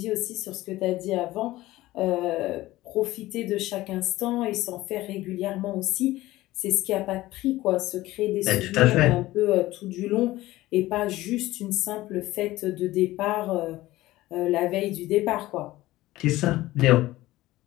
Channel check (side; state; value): right; quieter; 17.2 dB